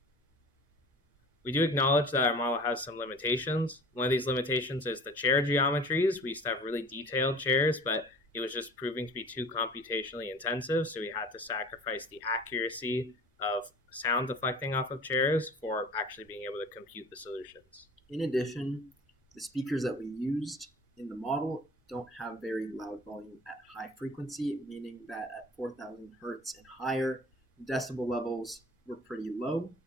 We do acknowledge that our model has some limitations. One of these limitations is the chair geometries. We used to have really detailed chairs, but it was just proving to be too computationally intensive, so we had to sacrifice the accuracy of sound deflecting off of chairs for actually being able to compute the solutions. In addition, the speakers that we used in the model don't have very loud volume at high frequency, meaning that at 4,000 hertz and higher, decibel levels were pretty low.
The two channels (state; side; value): normal; both; correlation 0.43